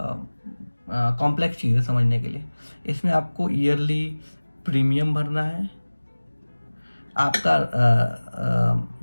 कॉम्प्लेक्स चीज़ है समझने के लिए। इसमें आपको ईयरली प्रीमियम भरना है, आपका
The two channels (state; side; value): inverted; both; correlation -1.00